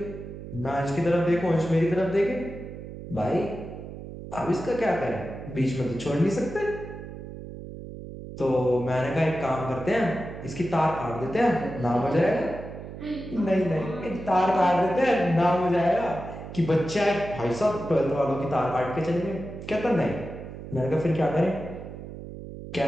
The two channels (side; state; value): right; noise; hum, 11 dB below the sound